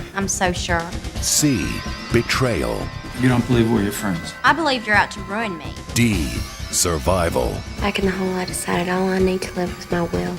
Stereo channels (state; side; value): identical; both; correlation 1.00